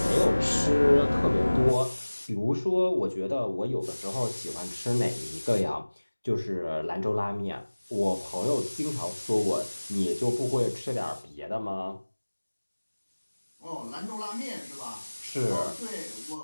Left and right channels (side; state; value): both; inverted; correlation -1.00